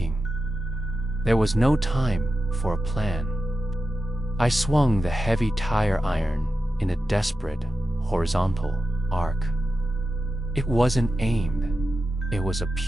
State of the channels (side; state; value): both; normal; correlation 0.92